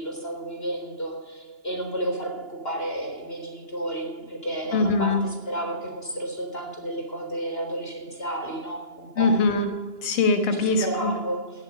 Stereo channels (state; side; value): late; right; 2.9 ms